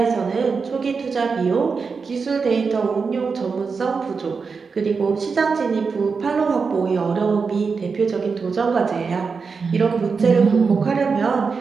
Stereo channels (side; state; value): left; quieter; 5.1 dB